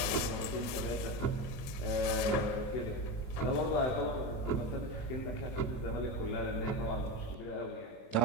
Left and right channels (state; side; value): late; right; 23 ms